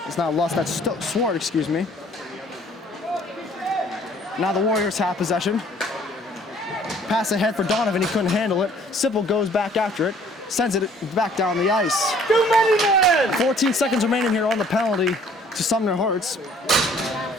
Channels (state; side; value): normal; both; correlation 0.57